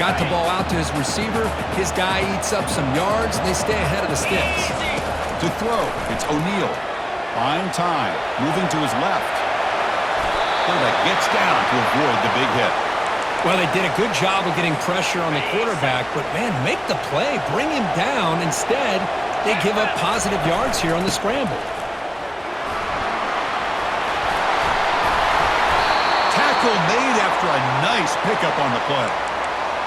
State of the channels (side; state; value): both; identical; correlation 1.00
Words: the ball out to his receiver. His guy eats up some yards, and they stay ahead of the sticks. To throw, it's O'Neal. Fine time, moving to his left. Quarterback gets down to avoid the big hit. Well, they did a good job of getting pressure on the quarterback, but, man, make the play. Bring him down. Instead, they give up positive yards here on the scramble. Tackle made after a nice pickup on the play.